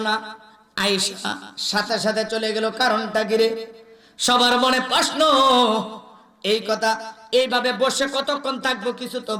না আয়েশা সাথে সাথে চলে গেল কারণটা কি রে সবার মনে প্রশ্ন এই কথা এইভাবে বসে কতক্ষণ থাকবো কিছু তো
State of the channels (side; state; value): both; identical; correlation 1.00